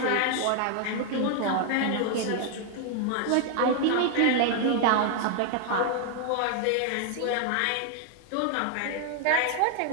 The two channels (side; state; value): both; different; correlation 0.00